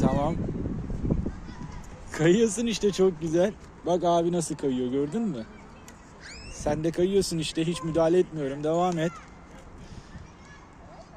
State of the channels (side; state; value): both; identical; correlation 1.00